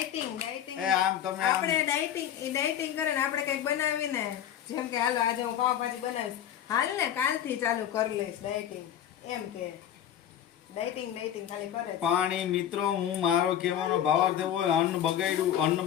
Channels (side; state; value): right; quieter; 10.3 dB